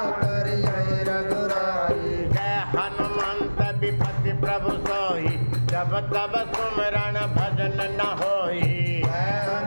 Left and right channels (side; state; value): both; inverted; correlation -1.00